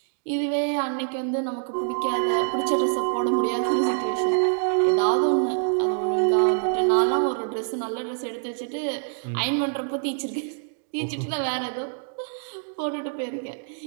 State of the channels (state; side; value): silent; left; digital silence